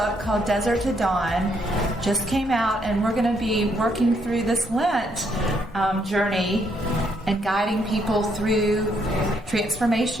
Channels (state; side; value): normal; both; correlation 0.72